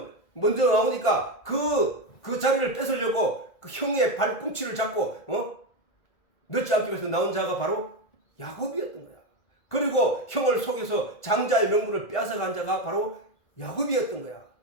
먼저 나오니까 그 자리를 뺏으려고 그 형의 발꿈치를 잡고 늦지 않기 위해서 나온 자가 바로 야곱이었던 거야. 그리고 형을 속여서 장자의 명분을 빼앗아간 자가 바로 야곱이었던 거야.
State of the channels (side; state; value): right; late; 1.5 ms